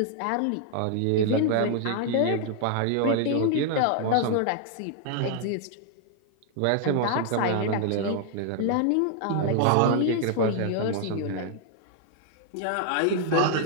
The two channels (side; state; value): both; different; correlation 0.00